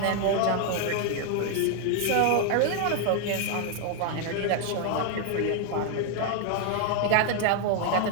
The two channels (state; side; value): different; both; correlation 0.00